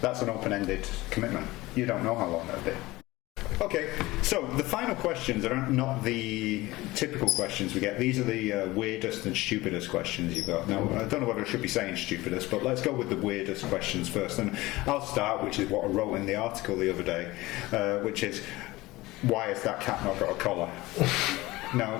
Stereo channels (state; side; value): quieter; right; 19.6 dB